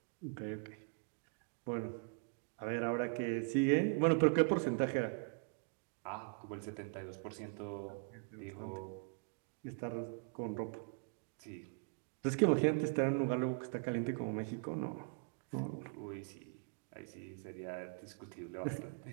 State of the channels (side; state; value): left; quieter; 37.8 dB